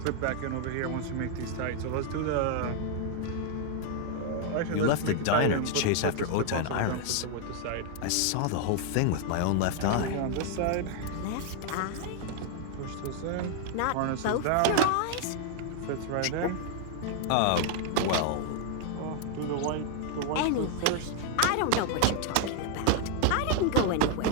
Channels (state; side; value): different; both; correlation 0.00